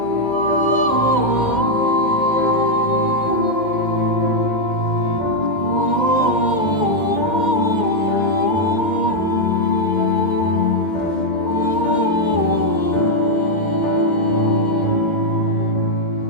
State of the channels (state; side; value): late; right; 2.1 ms